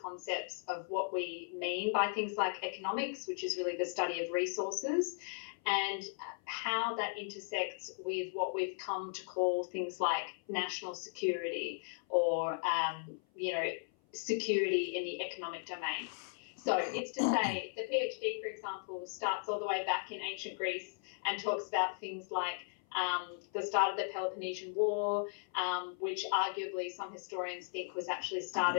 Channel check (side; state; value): right; silent; 53 dB below the other